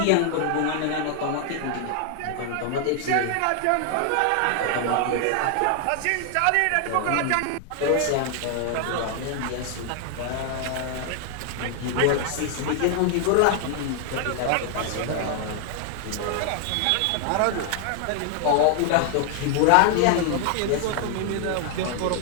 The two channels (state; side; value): different; both; correlation 0.00